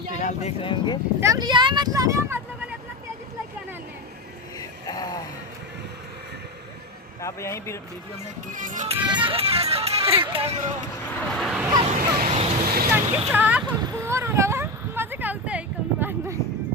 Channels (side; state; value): both; normal; correlation 0.16